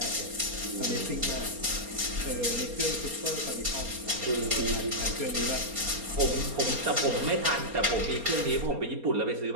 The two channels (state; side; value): late; left; 4.3 ms